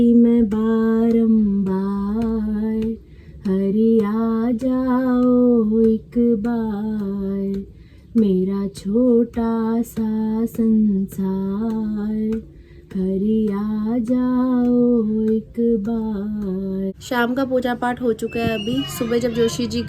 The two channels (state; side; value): identical; both; correlation 1.00